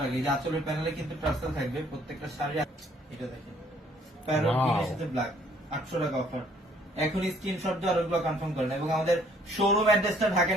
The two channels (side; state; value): both; normal; correlation 0.62